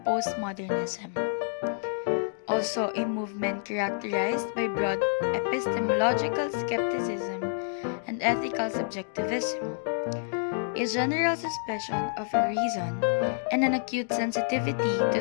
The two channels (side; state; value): right; silent; digital silence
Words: postmodernism, also a movement characterized by broad epistemological skepticism and ethical subjectivism. a general suspicion of a reason, and an acute sensitivity to